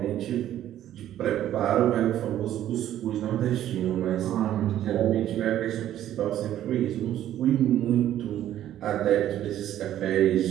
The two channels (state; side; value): quieter; left; 12.0 dB